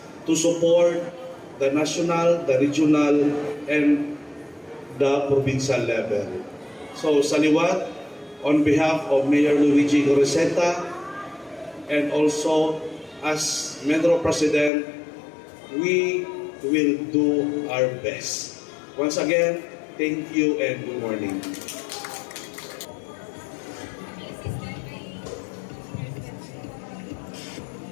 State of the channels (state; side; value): drops out; right; at 14.7 s